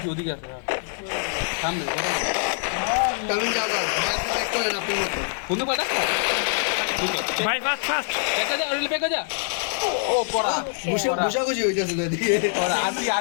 ওদিকে আছে সামনে তামিম যাও ব্যাক করেন আপনি মতো কোন পাটা ভাই ফাস্ট ফাস্ট বেকা যা ও পড়া ঘুষাঘুষি হইতেছে তো এদিকে পড়া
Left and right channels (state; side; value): silent; right; digital silence